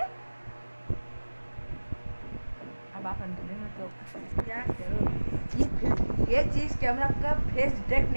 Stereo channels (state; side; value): inverted; both; correlation -1.00